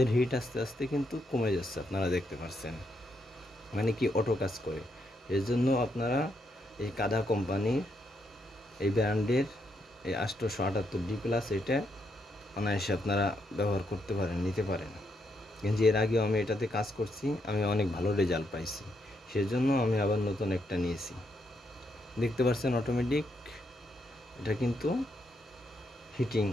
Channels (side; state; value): both; normal; correlation 0.78